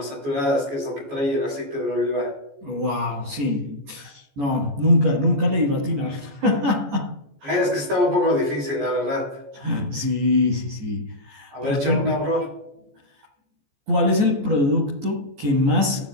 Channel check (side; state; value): left; late; 14 ms